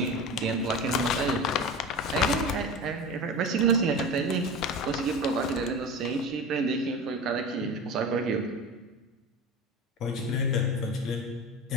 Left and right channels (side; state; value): both; normal; correlation 0.30